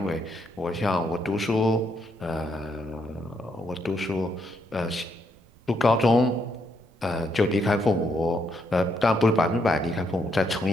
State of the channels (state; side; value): noise; right; rumble, 28 dB below the sound